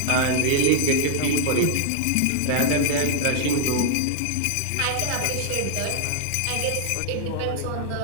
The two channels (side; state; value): both; different; correlation 0.00